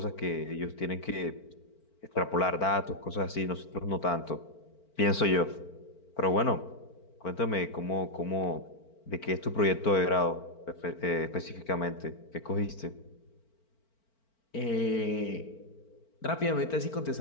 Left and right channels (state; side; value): late; right; 4.4 ms